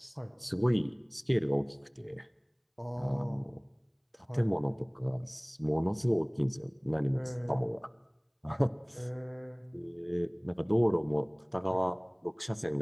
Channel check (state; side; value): identical; both; correlation 1.00